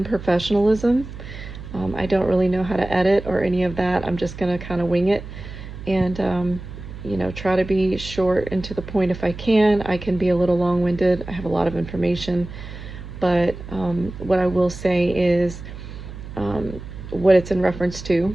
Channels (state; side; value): noise; right; hum, 12 dB below the sound